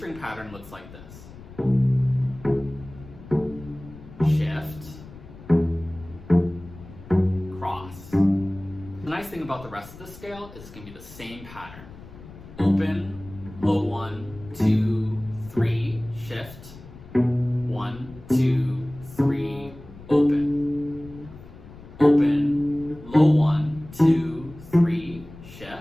pattern looks like this. Shift, cross. The nice thing about the rest of the scale is it's going to be the same pattern. Open, low 1, 2, 3, shift, 1, 2, 3, open. Open, low 1, 2, 3,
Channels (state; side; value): noise; left; rumble, 18 dB below the sound